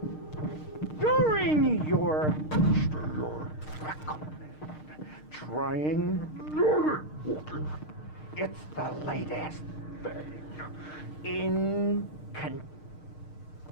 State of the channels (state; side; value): late; right; 6.5 ms